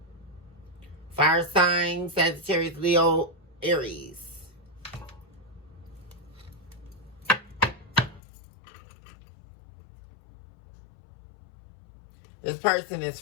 Fire sign. Sagittarius, Leo, Aries. This person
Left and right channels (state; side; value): drops out; right; at 8.2 s